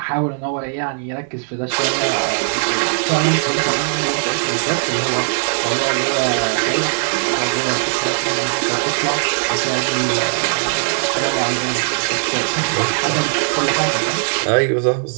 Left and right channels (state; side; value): silent; left; digital silence